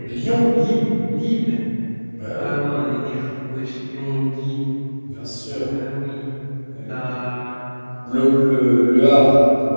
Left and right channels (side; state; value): both; inverted; correlation -1.00